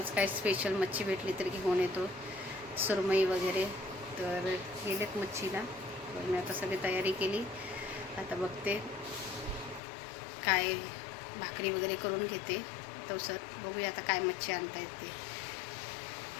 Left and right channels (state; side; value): drops out; right; at 9.8 s